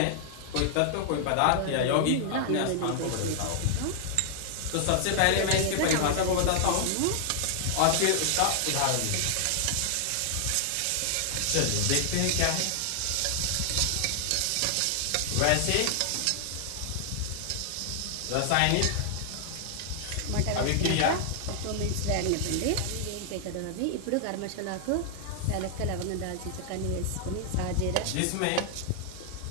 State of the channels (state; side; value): different; both; correlation -0.01